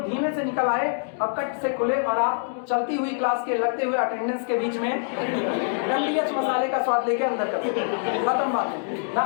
धीमे से निकल आए और कट से खुले, और आप चलती हुई क्लास के लगते हुए अटेंडेंस के बीच में डंडीएच मसाले का स्वाद लेके अंदर करते, खत्म बात ना।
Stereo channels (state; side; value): silent; right; digital silence